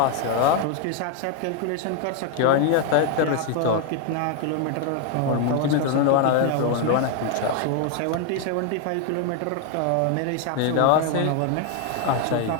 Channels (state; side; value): different; both; correlation 0.01